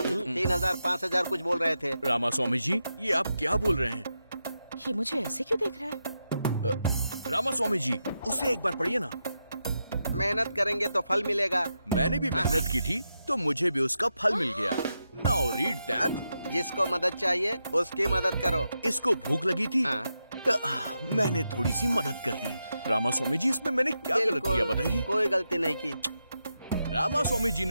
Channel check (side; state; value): both; inverted; correlation -0.87